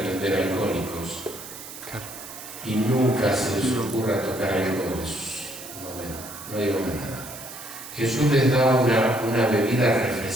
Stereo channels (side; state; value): right; noise; hiss, 13 dB below the sound